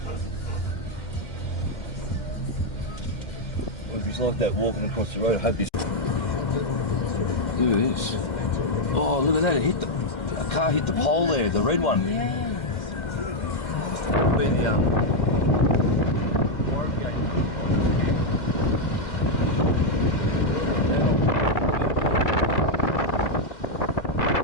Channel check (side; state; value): right; late; 2.1 ms